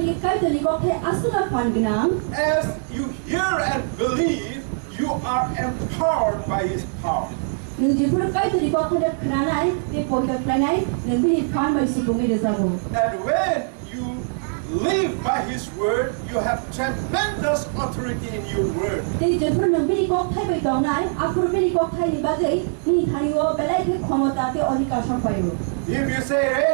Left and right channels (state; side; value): silent; left; digital silence